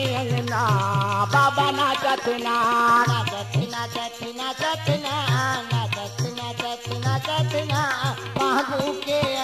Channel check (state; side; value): identical; both; correlation 1.00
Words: अंगना बाबा नाचत ना महबू के